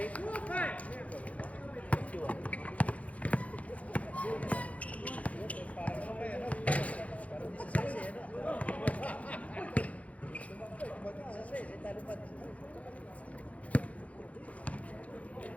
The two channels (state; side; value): late; right; 0.066 ms